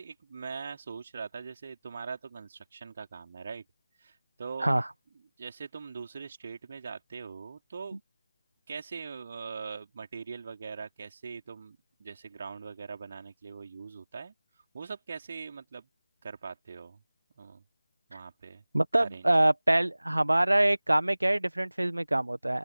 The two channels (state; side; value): inverted; both; correlation -0.99